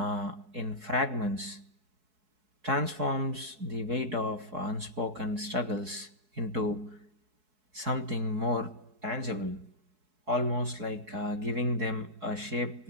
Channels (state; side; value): late; left; 4.7 ms